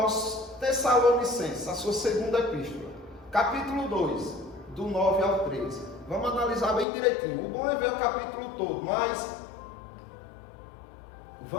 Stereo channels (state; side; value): drops out; right; at 6.9 s